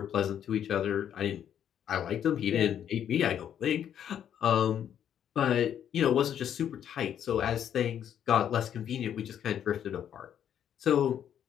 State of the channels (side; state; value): right; quieter; 9.5 dB